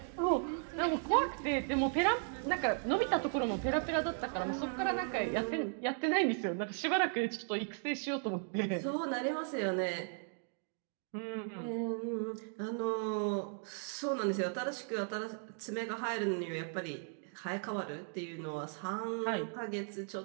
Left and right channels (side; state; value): left; silent; 53 dB below the other